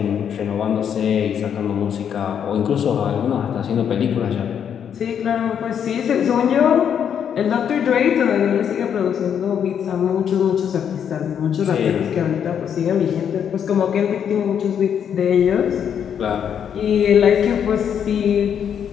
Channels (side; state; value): right; quieter; 8.3 dB